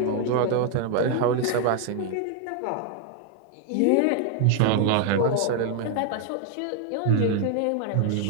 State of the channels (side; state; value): both; different; correlation 0.00